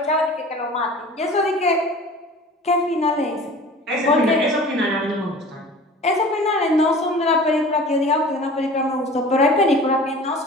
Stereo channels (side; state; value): both; normal; correlation 0.42